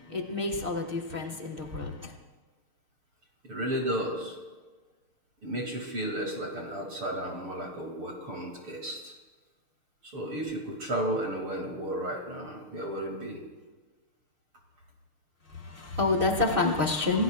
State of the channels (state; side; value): late; left; 6.6 ms